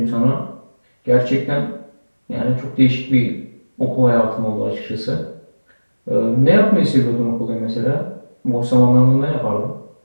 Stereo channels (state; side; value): inverted; both; correlation -1.00